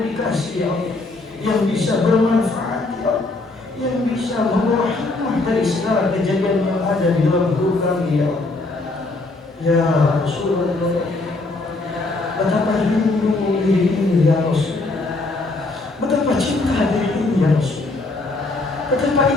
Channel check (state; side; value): quieter; right; 3.2 dB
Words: ya Allah, yang bisa bermanfaat, ya Allah, yang bisa membawa hikmah dari segala kejadian yang ada di dalam hidup kami, ya Allah. Ya Rasulullah, betapa rindu diri ini, ya Rasul. Betapa cinta diri ini, ya Rasul. Betapa